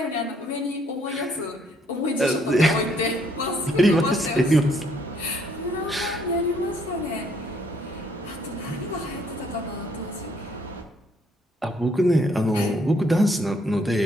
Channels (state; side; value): normal; both; correlation 0.67